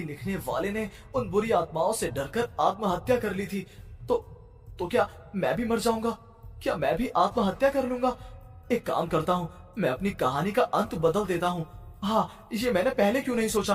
लिखने वाले ने उन बुरी आत्माओं से डरकर आत्महत्या कर ली थी। तो क्या मैं भी मर जाऊंगा? क्या मैं भी आत्महत्या कर लूंगा? एक काम करता हूँ, मैं अपनी कहानी का अंत बदल देता हूँ। हाँ, ये मैंने पहले क्यों नहीं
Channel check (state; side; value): identical; both; correlation 1.00